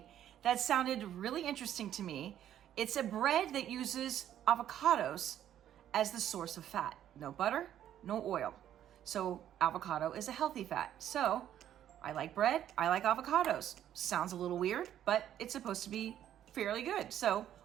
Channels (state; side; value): quieter; left; 11.0 dB